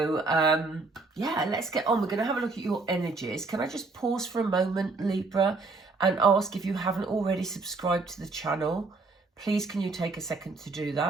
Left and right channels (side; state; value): left; quieter; 3.8 dB